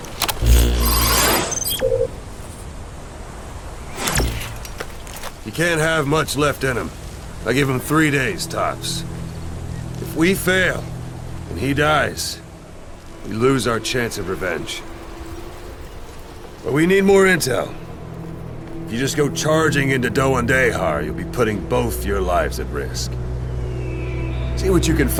You can't have much left in him. I give him 3 days, tops. If we fail, and he dies, we lose our chance of revenge. But we need more intel. If you just go charging into DEJA, you'll be putting both your lives at risk. See what you can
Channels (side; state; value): both; identical; correlation 1.00